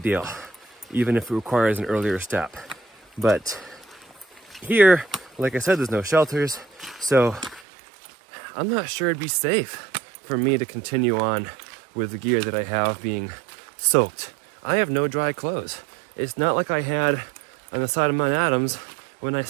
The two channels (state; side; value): drops out; left; at 7.7 s